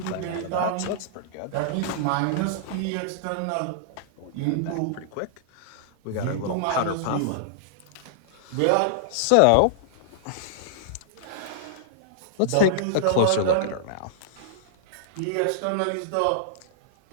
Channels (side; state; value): both; different; correlation -0.01